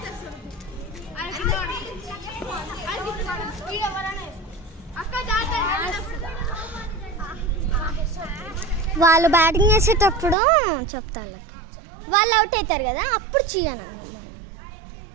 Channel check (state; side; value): drops out; left; at 10.4 s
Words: వాళ్ళు బ్యాటింగ్ చేసేటప్పుడు చెప్తా వాళ్ళు అవుట్ అవుతారు కదా అప్పుడు చేయను